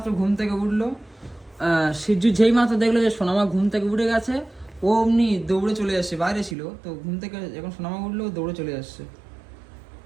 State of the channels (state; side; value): drops out; left; at 6.6 s